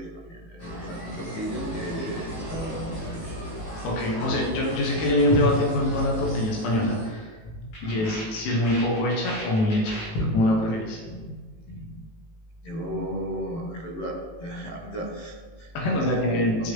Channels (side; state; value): right; late; 18 ms